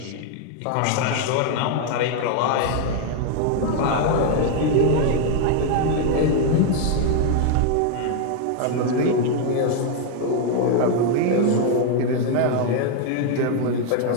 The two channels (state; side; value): different; both; correlation 0.00